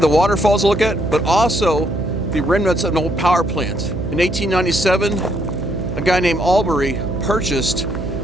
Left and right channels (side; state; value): right; noise; hum, 6 dB below the sound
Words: the waterfalls to look at, but also the remnants of an old power plant. In 1897, a guy named Albury purchased